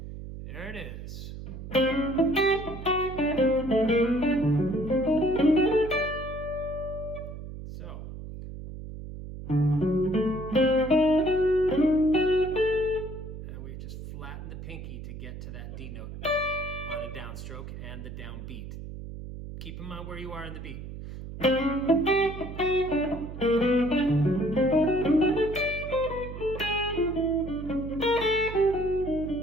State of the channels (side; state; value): right; noise; hum, 10 dB below the sound